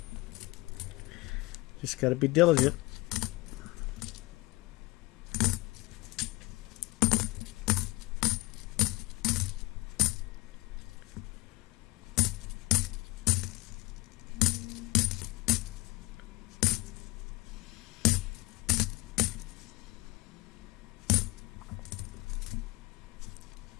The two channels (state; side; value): quieter; right; 22.2 dB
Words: Just got to be diligent.